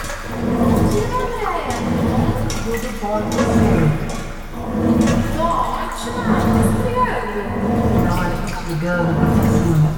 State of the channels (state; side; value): identical; both; correlation 1.00